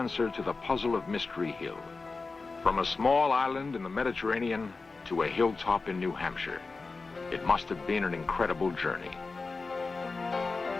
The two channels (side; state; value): right; quieter; 4.0 dB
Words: to the puzzle of Mystery Hill. From a small island in the Mediterranean to a hilltop in New Hampshire, it must have been an incredible journey.